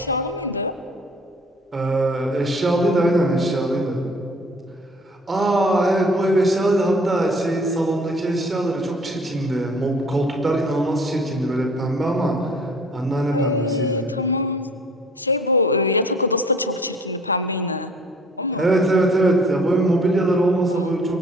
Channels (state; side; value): normal; both; correlation 0.53